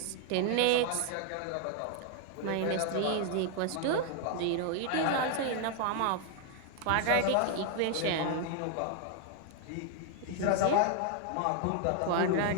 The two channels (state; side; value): different; both; correlation 0.00